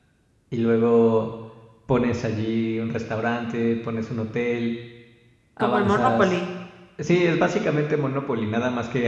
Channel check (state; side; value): identical; both; correlation 1.00